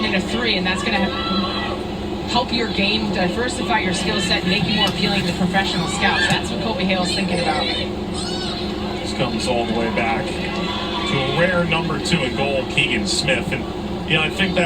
in a 3, and that's going to help your game, diversify your skill set, and make you more appealing to professional scouts. That's what Kobe Hale's thinking about. This comes all the way back to a rare number 2 in goal, Keegan Smith. And I think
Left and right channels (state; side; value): identical; both; correlation 1.00